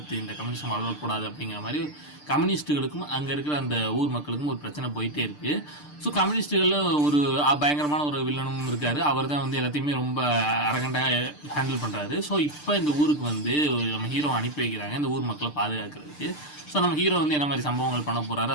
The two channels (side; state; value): right; late; 6.7 ms